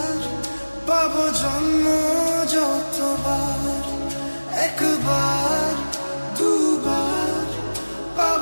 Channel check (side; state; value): both; inverted; correlation -1.00